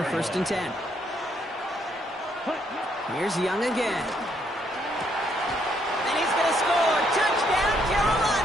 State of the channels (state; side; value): normal; both; correlation 0.72